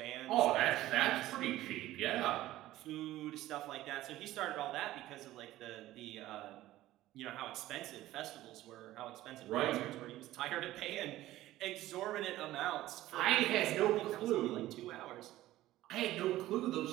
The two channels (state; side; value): quieter; left; 15.4 dB